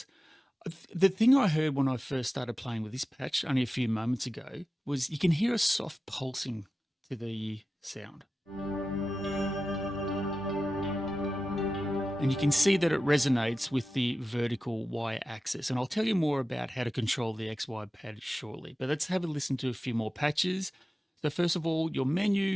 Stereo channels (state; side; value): normal; both; correlation 0.94